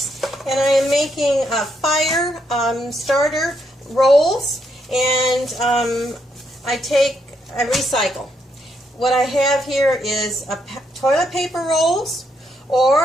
and I am making fire starter rolls, and I recycle. What I have here is toilet paper rolls,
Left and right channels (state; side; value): normal; both; correlation 0.76